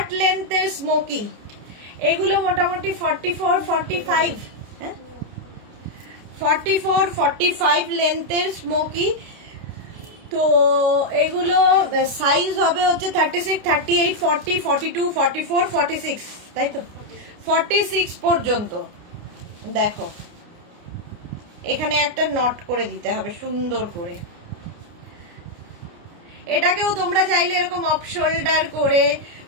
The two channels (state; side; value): late; left; 29 ms